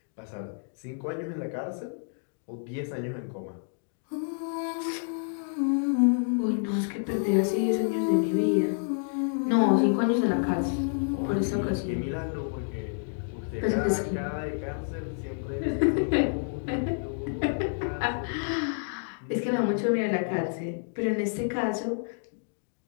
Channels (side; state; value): right; silent; digital silence